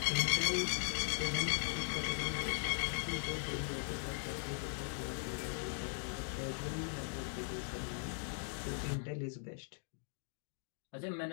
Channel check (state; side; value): silent; right; digital silence